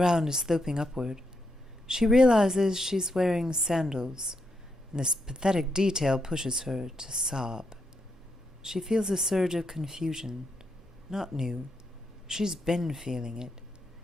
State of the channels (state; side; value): normal; both; correlation 0.81